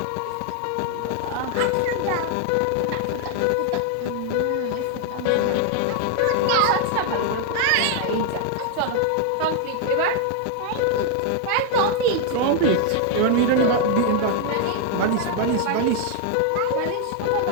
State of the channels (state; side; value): different; both; correlation 0.00